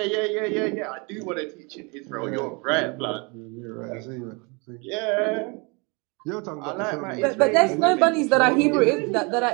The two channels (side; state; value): left; quieter; 30.4 dB